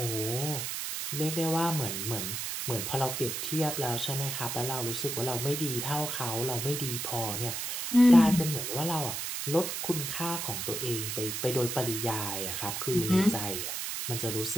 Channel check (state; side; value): noise; right; hiss, 3 dB below the sound